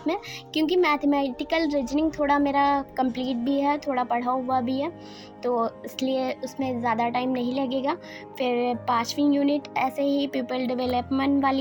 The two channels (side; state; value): both; identical; correlation 1.00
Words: में, क्योंकि मैथमेटिकल रीजनिंग थोड़ा मेरा कंप्लीट भी है, थोड़ा पढ़ा हुआ भी है, तो इसलिए उसमें ज़्यादा टाइम नहीं लगेगा। फिर 5वीं यूनिट ऐसे ही पीपल डेवलपमेंट